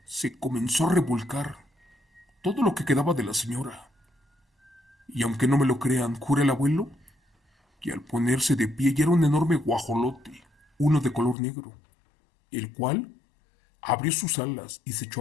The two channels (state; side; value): drops out; right; at 11.4 s